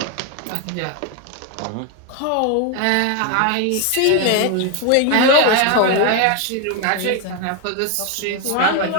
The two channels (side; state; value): both; different; correlation 0.01